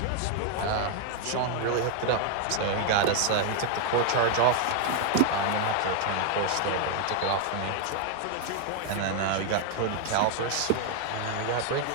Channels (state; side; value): different; both; correlation 0.00